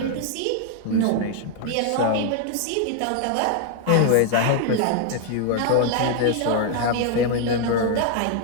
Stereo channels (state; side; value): different; both; correlation 0.00